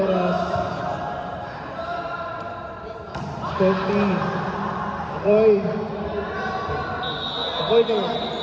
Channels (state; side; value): identical; both; correlation 1.00